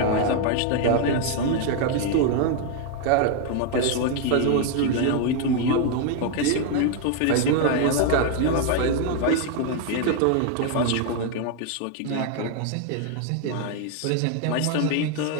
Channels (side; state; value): both; different; correlation 0.01